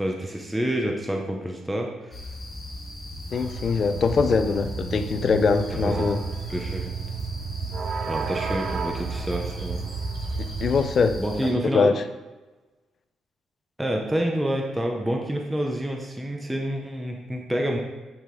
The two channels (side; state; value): both; normal; correlation 0.84